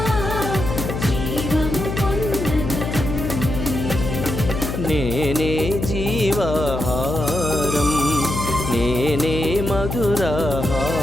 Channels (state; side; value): noise; left; hum, 4 dB below the sound